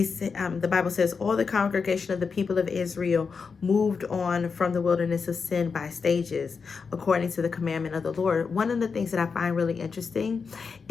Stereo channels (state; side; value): quieter; right; 5.3 dB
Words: Bible says, all the congregation of the people of Israel moved on from the wilderness of sin by stages, according to the commandment of the Lord. One of the things that I find really interesting